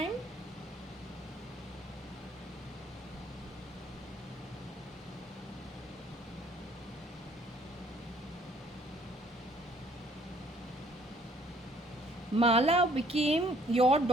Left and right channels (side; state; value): both; normal; correlation 0.61